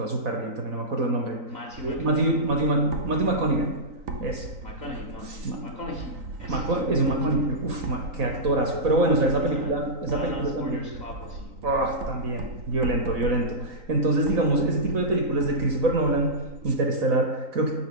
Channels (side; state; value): left; late; 3.9 ms